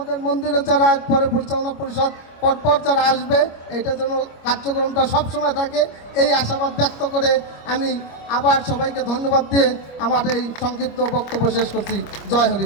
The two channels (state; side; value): late; right; 25 ms